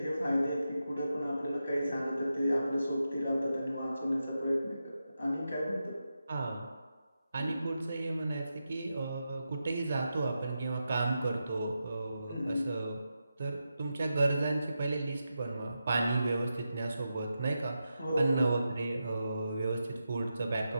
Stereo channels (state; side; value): inverted; both; correlation -0.89